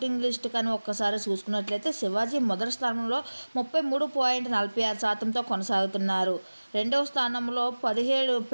లిస్ట్ కానీ ఒక్కసారి చూసుకున్నట్లయితే శివాజీ మొదటి స్థానంలో 33.46%తో కొనసాగుతున్నారు. రెండవ స్థానంలో 17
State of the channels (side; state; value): both; inverted; correlation -1.00